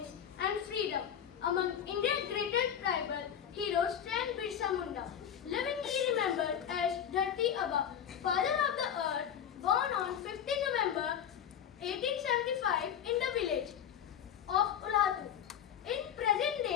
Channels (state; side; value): quieter; right; 9.0 dB